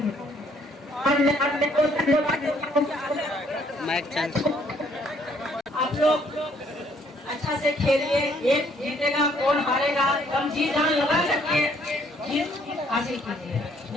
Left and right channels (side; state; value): both; normal; correlation 0.65